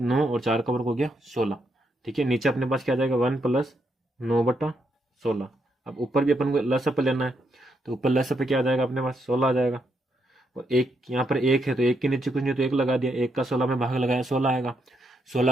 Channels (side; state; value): both; normal; correlation 0.79